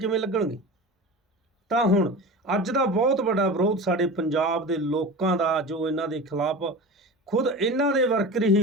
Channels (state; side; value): normal; both; correlation 0.31